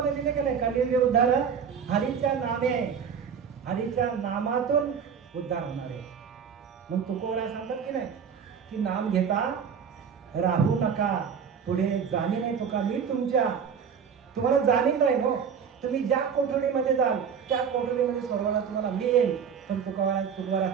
दिले की नाही? कली विरुद्धार हरीच्या नामे, हरीच्या नामातून उद्धार होणार आहे. मग तुकोबरा सांगतात की नाही की नाम घेता राहू नका, पुढे जाणी नाही तुका मी तुम्हाला जाणीव नाही. हो, तुम्ही ज्या कोठडीमध्ये जाल त्या कोठडीमध्ये सोडवायला तुम्हाला मी येईल. पण तुकोबरा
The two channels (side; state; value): left; quieter; 7.0 dB